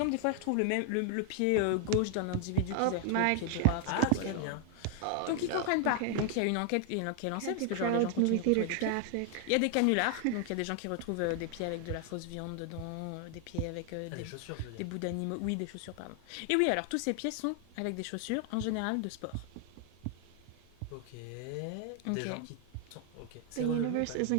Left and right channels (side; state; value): both; different; correlation 0.00